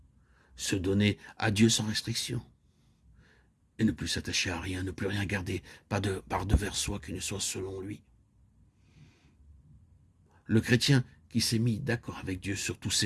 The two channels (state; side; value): identical; both; correlation 1.00